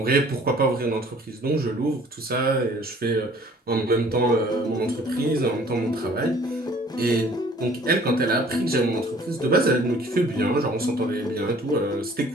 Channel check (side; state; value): both; normal; correlation 0.53